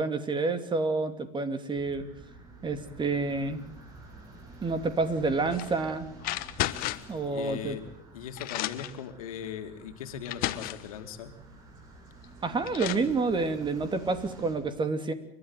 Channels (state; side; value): normal; both; correlation 0.42